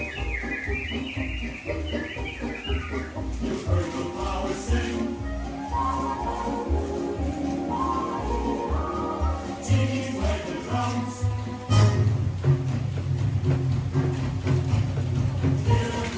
You heard the flowers sing.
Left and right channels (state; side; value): identical; both; correlation 1.00